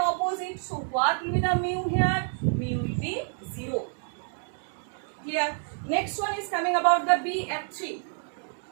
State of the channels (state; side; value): silent; left; 59 dB below the other